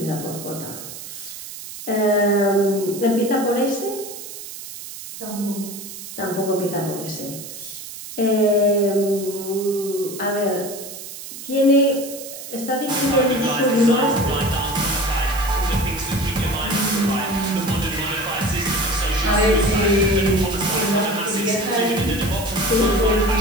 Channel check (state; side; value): noise; right; hiss, 12 dB below the sound